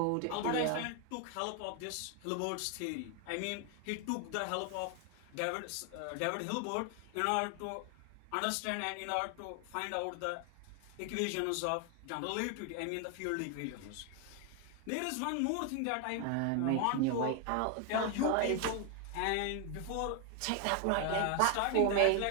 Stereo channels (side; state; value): both; different; correlation 0.01